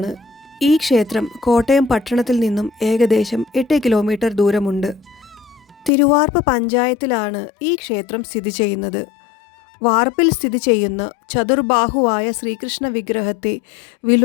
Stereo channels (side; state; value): right; drops out; at 5.9 s